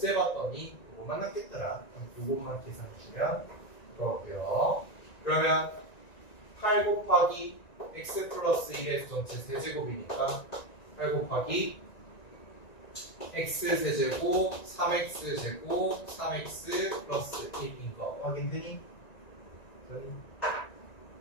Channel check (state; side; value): late; right; 1.9 ms